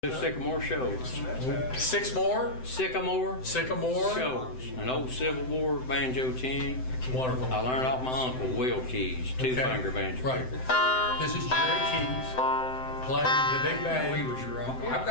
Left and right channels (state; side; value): late; right; 7.8 ms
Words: Sycamore Shoals. Sycamore Shoals. An old Civil War banjo tune. Wonderful. I learned off my uncle, Will Keys, two-finger banjo Right. picker. This is Jerry Keys playing the big band. He was your uncle. I've